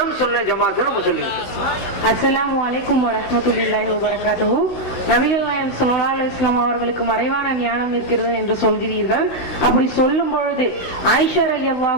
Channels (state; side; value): late; right; 16 ms